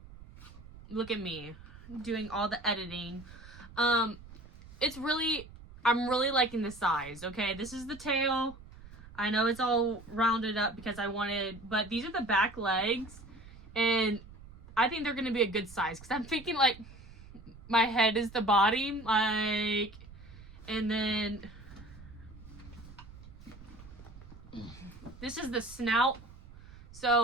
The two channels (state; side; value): noise; right; rumble, 18 dB below the sound